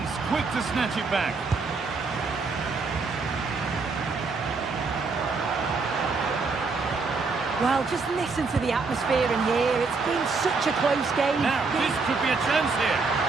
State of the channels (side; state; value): left; quieter; 4.3 dB